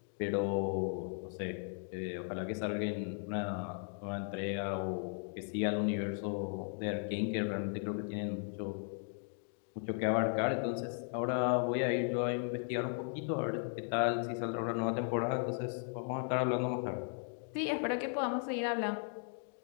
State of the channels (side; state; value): right; silent; 53 dB below the other